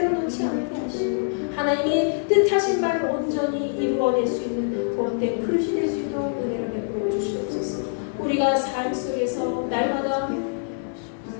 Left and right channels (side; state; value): right; silent; digital silence